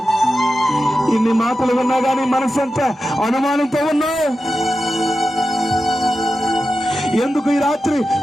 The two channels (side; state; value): both; normal; correlation 0.92